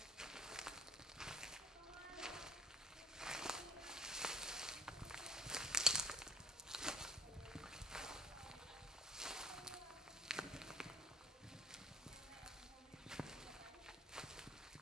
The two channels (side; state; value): both; normal; correlation 0.50